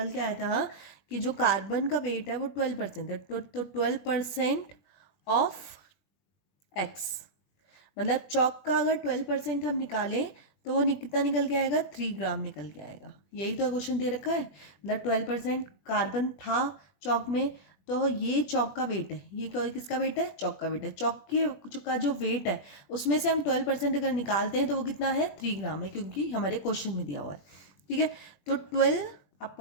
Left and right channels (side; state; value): right; late; 21 ms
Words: के आया था कि जो कार्बन का वेट है वो 12% है। तो 12% ऑफ x, मतलब चॉक का अगर 12% हम निकालें तो वो कितना निकल के आएगा, 3 ग्राम निकल के आएगा। यही तो क्वेश्चन दे रखा है, मतलब 12% कार्बन था चॉक में, तो ये चॉक का वेट है। ये किसका वेट है, चॉक का वेट है। चॉक के का जो वेट है उसमें से हम 12% अगर निकालते हैं तो वो कितना है, 3 ग्राम है, क्योंकि हमारे क्वेश्चन में दिया हुआ है। ठीक है, तो